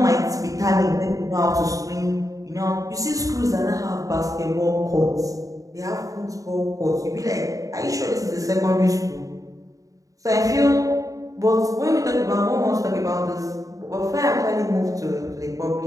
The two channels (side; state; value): left; late; 0.16 ms